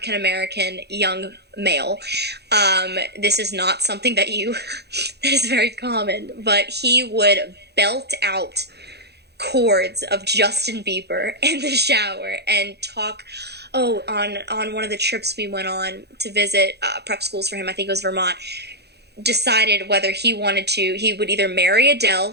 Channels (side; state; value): left; late; 0.48 ms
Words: young male. This is not something that is very common, but he would belt out chords of Justin Bieber in the shower and talk. On one of the trips we went on to visit prep schools for him, I think it was Vermont, decided whether he would either marry